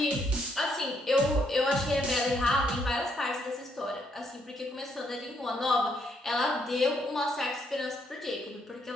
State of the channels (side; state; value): both; normal; correlation 0.73